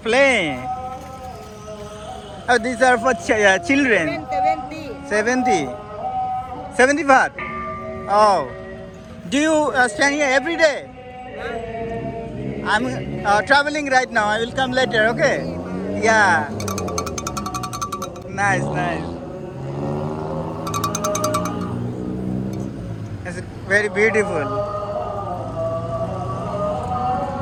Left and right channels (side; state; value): both; identical; correlation 1.00